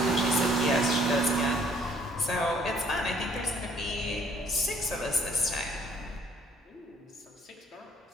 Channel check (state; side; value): normal; both; correlation 0.60